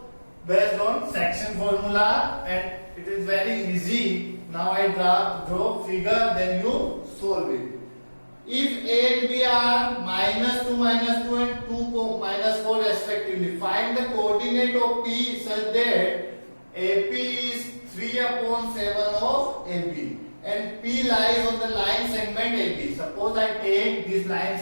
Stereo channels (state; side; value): inverted; both; correlation -1.00